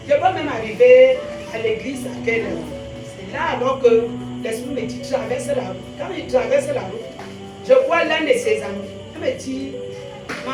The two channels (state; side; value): identical; both; correlation 1.00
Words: Je peux même arriver à l'église à quelle heure? C'est là alors que l'esprit me dit, traverse la route. Quand il traverse la route, je vois l'un de ses amis. Il me dit,